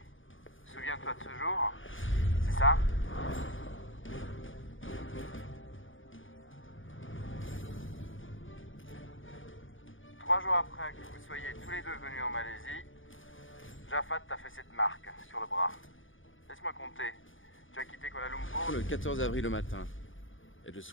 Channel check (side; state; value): right; late; 0.57 ms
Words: Souviens-toi de ce jour? C'est ça? Trois jours après que vous soyez tous les deux venus en Malaisie, Jafad t'a fait cette marque sur le bras. Laisse-moi compter. Tu as quitté Kuala Lumpur Le 14 avril au matin. Et le